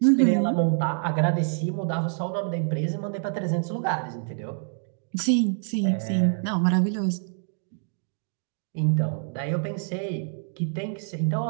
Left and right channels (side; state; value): left; silent; digital silence